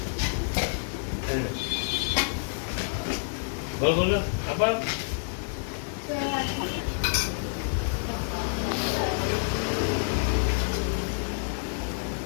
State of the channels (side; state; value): right; silent; digital silence